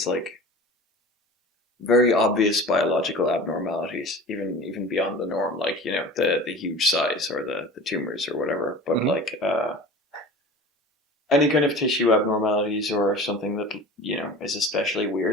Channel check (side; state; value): both; normal; correlation 0.38